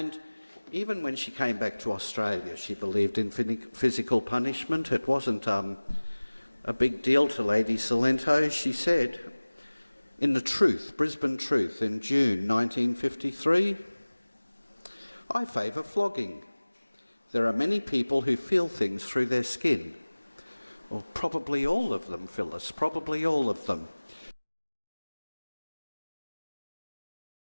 Even when she came back to Australia, she believed in physical punishment. It wasn't a big deal to Lady Cilento. She said, in the Truth, Brisbane Truth, in June 1953, "I favour flogging. There are many people who feel things through their skin." Well, probably all of them, Phyllis, probably all of them.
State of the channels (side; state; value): both; inverted; correlation -1.00